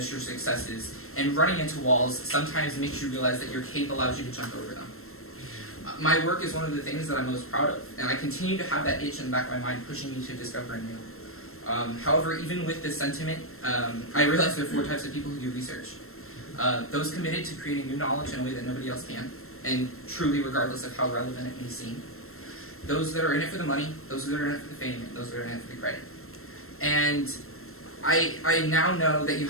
your successes, and running into walls sometimes makes you realize that your cape allows you to jump over them. My work is one of the things that I'm most proud of, and I continue to have that itch in the back of my mind pushing me to discover new. However, even with this sentiment, I realize there are 4 types of people who do research. Those committed to creating new knowledge in a way that nobody else can, and truly regardless of how relevant it may seem. Those that are in it for the money, those that are in it for the fame, and those that are in it for the credit. And I now know that you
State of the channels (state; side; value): late; right; 0.62 ms